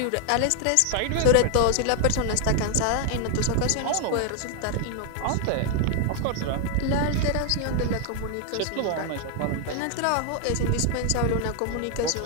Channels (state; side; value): different; both; correlation 0.00